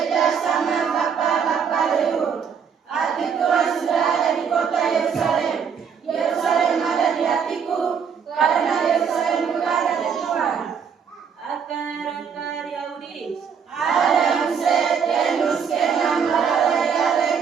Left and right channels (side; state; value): left; quieter; 6.9 dB